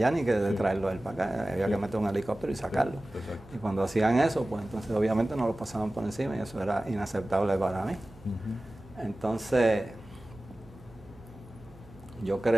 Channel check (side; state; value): right; noise; hum, 23 dB below the sound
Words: ni que de traerlo él para acá. Había que meter un helicóptero y sacarlo. Y cuando hacían eso, pues entonces obviamente no lo pasaban por encima y eso era inaceptable para mí. Entonces yo